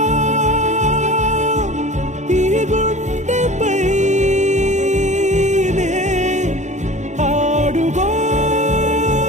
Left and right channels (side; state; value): left; late; 0.34 ms